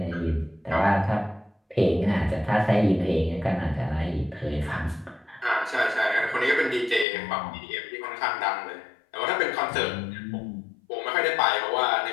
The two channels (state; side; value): drops out; right; at 7.1 s